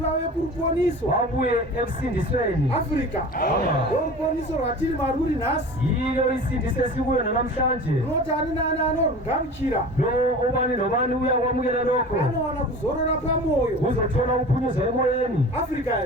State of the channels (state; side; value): normal; both; correlation 0.37